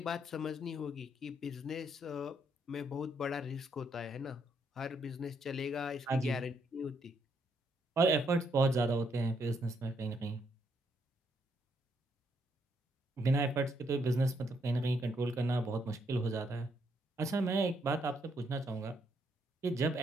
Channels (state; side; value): normal; both; correlation 0.74